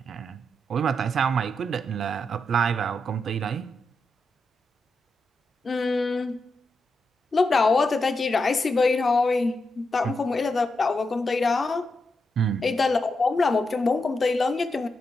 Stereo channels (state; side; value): normal; both; correlation 0.85